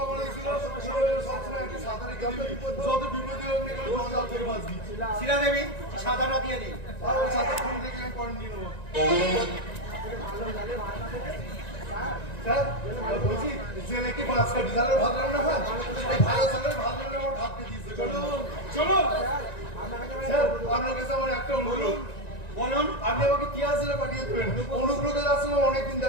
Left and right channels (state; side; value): late; right; 1.9 ms